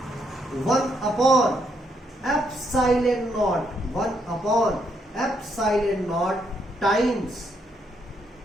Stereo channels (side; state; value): both; normal; correlation 0.75